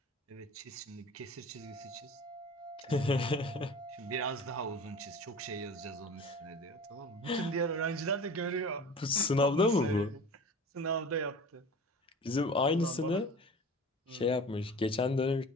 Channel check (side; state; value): both; normal; correlation 0.39